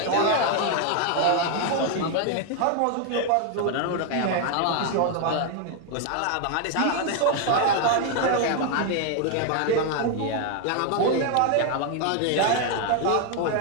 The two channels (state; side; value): different; both; correlation 0.01